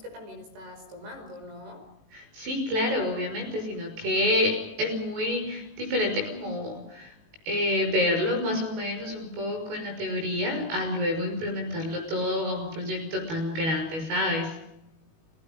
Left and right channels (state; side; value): late; left; 19 ms